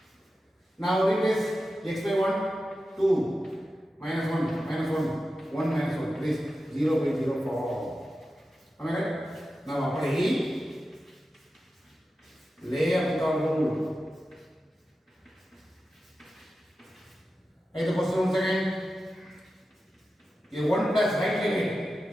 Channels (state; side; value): normal; both; correlation 0.92